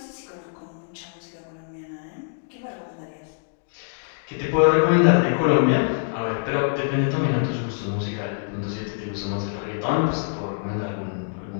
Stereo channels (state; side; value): silent; right; digital silence